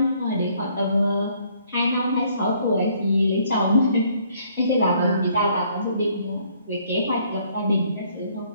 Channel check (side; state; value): both; inverted; correlation -0.64